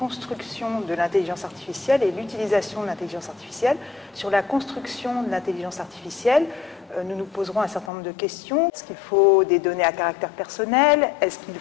de l'intelligence artificielle et l'utilisation de l'intelligence artificielle. Sur la construction de l'intelligence artificielle, nous nous poserons un certain nombre de questions. Est-ce qu'il faut des données à caractère personnel? Est-ce qu'il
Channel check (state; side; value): drops out; right; at 7.9 s